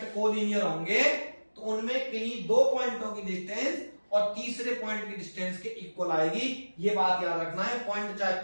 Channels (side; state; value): both; inverted; correlation -1.00